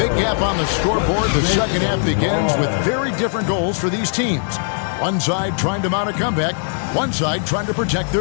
gap on the scoreboard, the second half begins with very different goals for these teams. One side trying to mount a comeback, one side trying to protect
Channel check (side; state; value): right; silent; digital silence